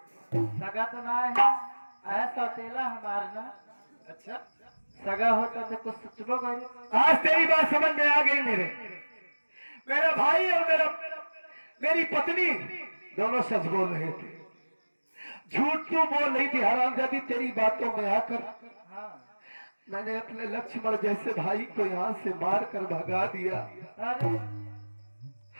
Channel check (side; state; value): both; inverted; correlation -1.00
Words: सगा तो ना है, आया सौतेला हमार ना। अच्छा, सगा होता तो कुछ सोचबो करी। आज तेरी बात समझ में आ गई। मेरा भाई और मेरी पत्नी दोनों सच बोल रहे थे, झूठ क्यों बोल रही थी हरामजादी? तेरी बातों में आकर मैंने अपने लक्ष्मण जैसे भाई को यहाँ से मार कर भगा दिया। अरे